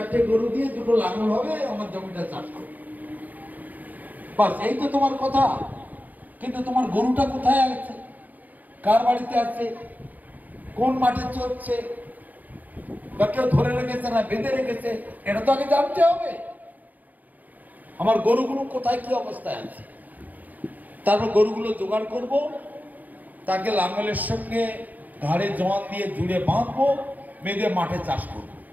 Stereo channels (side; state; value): left; late; 0.081 ms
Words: গরু দিয়ে 2টো লাঙল হবে, আমার জমিটা চাষ করো, বাস এই তো তোমার কথা। কিন্তু তোমার গরুটা কোথায় আছে, কার বাড়িতে আছে, কোন মাঠে চলছে, বা কেউ ধরে রেখেছে না বেঁধে রেখেছে, এটা তো আগে জানতে হবে। আমার গরুগুলো কোথায় কি অবস্থায় আছে, তারপর গরুগুলো জোগাড় করব, তাকে লাঙ্গলের সঙ্গে ঘাড়ে জোয়ান দিয়ে জুড়ে বাঁধবো, বেঁধে মাঠে চাষ করব,